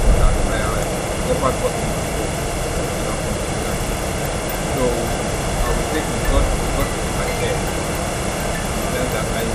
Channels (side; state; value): both; identical; correlation 1.00